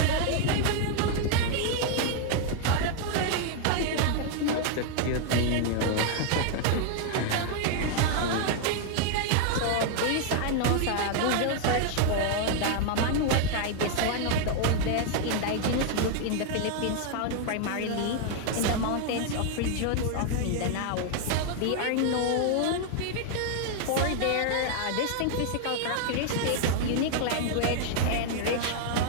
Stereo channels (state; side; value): different; both; correlation 0.00